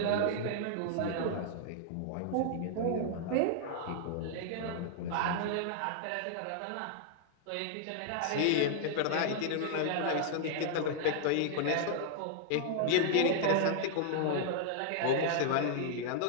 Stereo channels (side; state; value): both; different; correlation -0.01